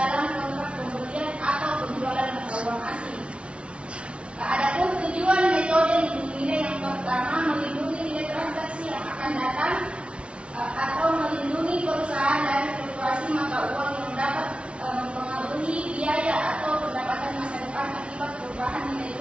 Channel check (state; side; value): late; left; 0.059 ms